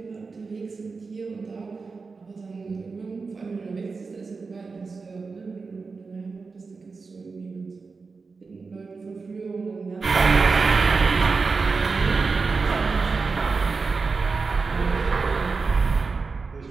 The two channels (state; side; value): quieter; left; 4.5 dB